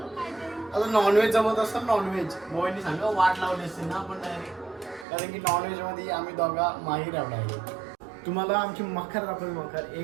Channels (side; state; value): left; drops out; at 5.1 s